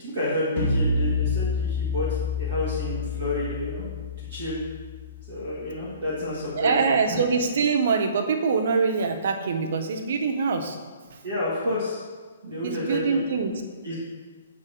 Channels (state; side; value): inverted; both; correlation -0.51